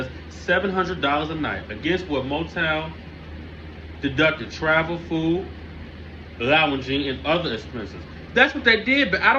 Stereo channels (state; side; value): identical; both; correlation 1.00